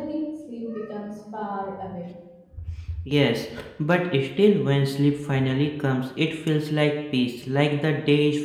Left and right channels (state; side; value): identical; both; correlation 1.00